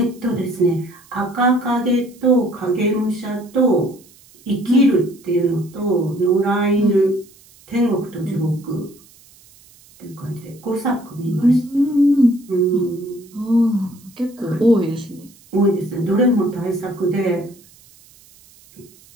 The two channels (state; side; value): noise; right; hiss, 27 dB below the sound